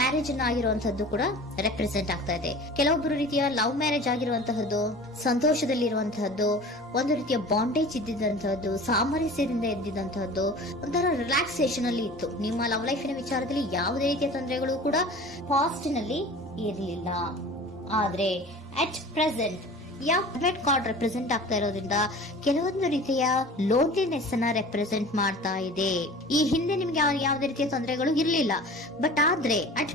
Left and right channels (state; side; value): normal; both; correlation 0.40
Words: ಅನ್ನ ಆಗಿರುವಂತದ್ದು ಕೂಡ ರೆಪ್ರೆಸೆಂಟ್ ಆಗ್ತಾ ಇದೆ. ಕೆಲವೊಬ್ರು ರೀತಿಯ ಲವ್ ಮ್ಯಾರೇಜ್ ಆಗಿರುವಂತಹದ್ದು, ಸಂತೋಷದಲ್ಲಿರುವಂತಹದ್ದು, ಒಂದು ರೀತಿಯ ಬಾಂಡೇಜ್ ಇದ್ದಿದ್ದಂತಹದ್ದು, ಸಾಮರಸ್ಯದಿಂದ ಇದ್ದಿದ್ದಂತಹದ್ದು, ಒಂಥರ ರಿಲ್ಯಾಕ್ಸೇಷನ್ ಅಲ್ಲಿ ಇತ್ತು. ನಿಮ್ಮ ಲವ್ ಲೈಫಿನ ವಿಚಾರದಲ್ಲಿ ಯಾವುದೇ ರೀತಿಯ ತೊಂದರೆಗಳು ಕೂಡ ಪಾಸ್ಟ್ ನಲ್ಲಿ ಇರಲಿಲ್ಲ. ಆದ್ರೆ ಅಟ್ ಪ್ರೆಸೆಂಟ್ ಯಾವ್ಮೆಟ್ ಕಾರ್ಡ್ ರೆಪ್ರೆಸೆಂಟ್ ಆಗ್ತಾ ಇರೋದ್ರಿಂದ ಕೆಲವೊಂದು ರೀತಿಯ ಲೋನ್ಲಿನೆಸ್ ಅನ್ನ ರೆಪ್ರೆಸೆಂಟ್ ಮಾಡ್ತಾ ಇದೆ. ಈ ಹಿಂದೆ ನಿಮ್ಗೆ ಯಾವುದೇ ರೀತಿಯ ತೊಂದರೆಗಳು ಇರಲಿಲ್ಲ, ಬಟ್ ಆದ್ರೆ ಅಟ್